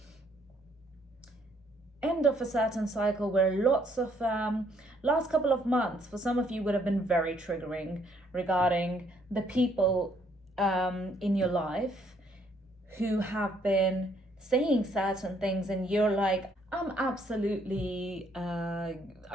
a certain cycle where lots of last couple of months for some of you would have been very triggering regarding the people in your life who have been saying certain things, and you're like, I'm absolutely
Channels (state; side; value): normal; both; correlation 0.67